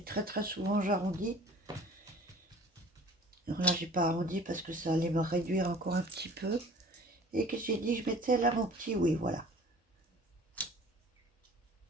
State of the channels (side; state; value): both; normal; correlation 0.47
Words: très très souvent j'arrondis. Alors là, j'ai pas arrondi parce que ça allait me réduire encore un petit peu. Et que j'ai dit, je mettais là mon petit, oui, voilà.